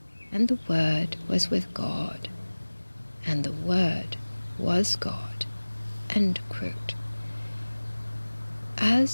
and the Word was with God, and the Word was God." End quote.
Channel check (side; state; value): both; inverted; correlation -1.00